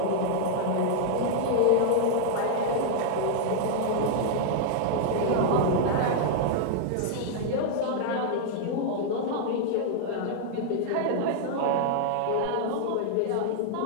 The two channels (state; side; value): different; both; correlation -0.01